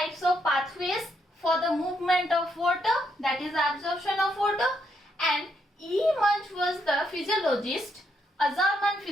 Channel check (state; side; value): normal; both; correlation 0.76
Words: of pathways for the movement of water, that is absorption of water, and E. Munch was the physiologist, a German